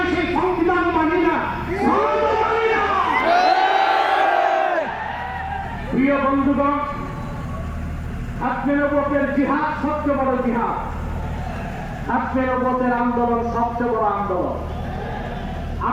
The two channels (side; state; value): both; identical; correlation 1.00